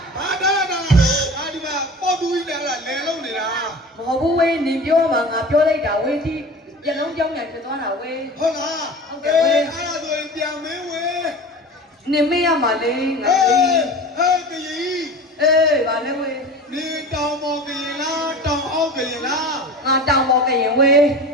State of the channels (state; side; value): normal; both; correlation 0.35